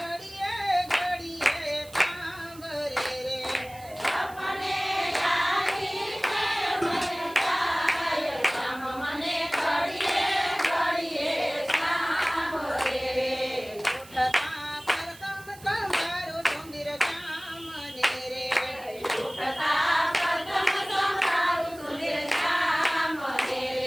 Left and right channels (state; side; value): noise; right; hiss, 21 dB below the sound